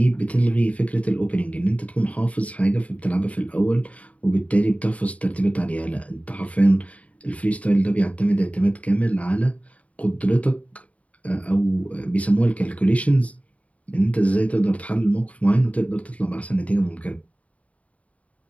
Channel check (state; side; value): late; right; 0.067 ms